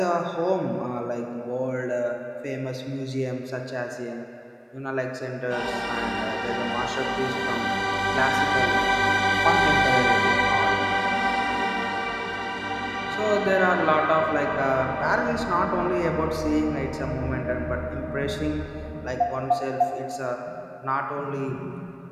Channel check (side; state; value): both; identical; correlation 1.00